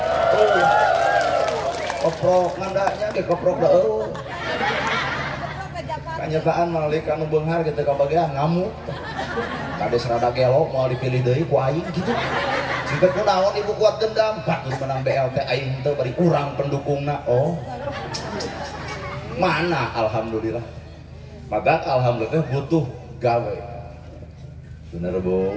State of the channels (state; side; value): identical; both; correlation 1.00